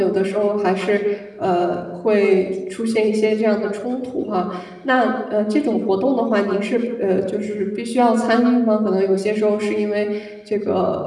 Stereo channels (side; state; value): both; identical; correlation 1.00